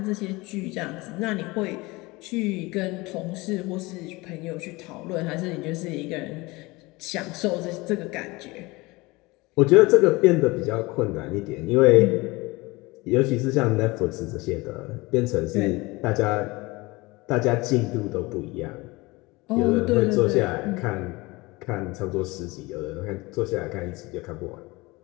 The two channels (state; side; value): quieter; right; 22.8 dB